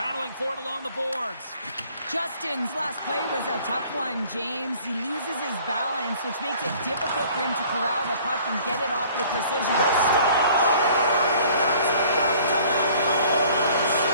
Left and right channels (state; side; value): inverted; both; correlation -0.54